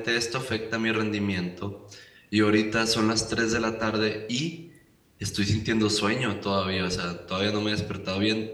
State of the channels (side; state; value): both; identical; correlation 1.00